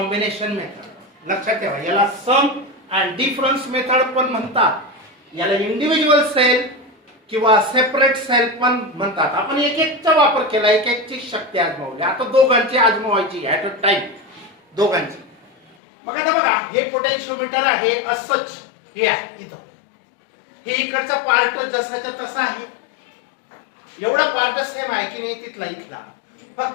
मेथड. लक्षात ठेवा, याला सम अँड डिफरन्स मेथड पण म्हणतात, याला इंडिव्हिज्युअल सेल किंवा सेपरेट सेल पण म्हणतात. आपण एक एकचा वापर केला, एक एकची शक्ती आजमावली. आता दोघांची आजमावायची ऍट अ टाइम, दोघांची. मग आता बघा, हे पोटेन्शियोमीटर आहे असंच, हे आहे इथं, हे इकडचा पार्ट जसाच्या तसा आहे, एवढा पार्ट सेम आहे की नाही तिथला इथला,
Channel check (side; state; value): right; drops out; at 15.8 s